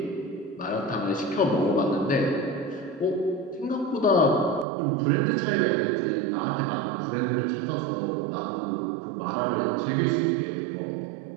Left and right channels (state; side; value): drops out; left; at 4.7 s